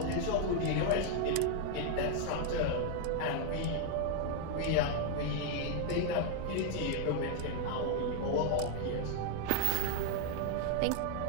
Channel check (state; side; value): different; both; correlation 0.00